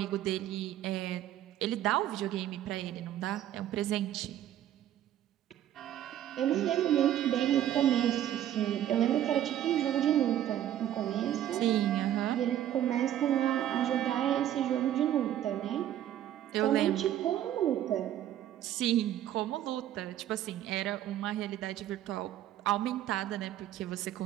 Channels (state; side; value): quieter; left; 11.8 dB